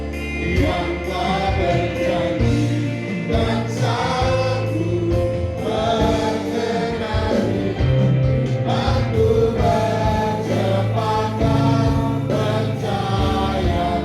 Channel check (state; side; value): identical; both; correlation 1.00